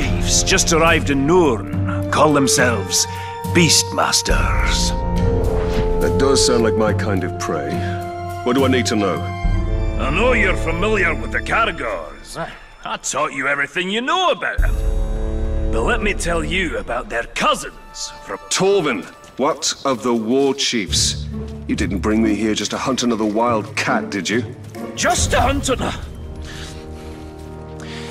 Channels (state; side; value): identical; both; correlation 1.00